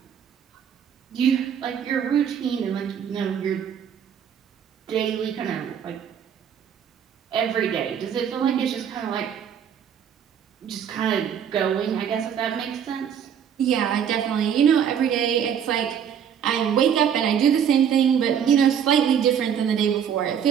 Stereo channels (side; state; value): left; quieter; 8.4 dB